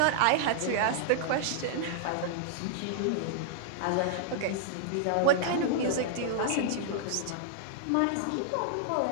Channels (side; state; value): both; different; correlation -0.01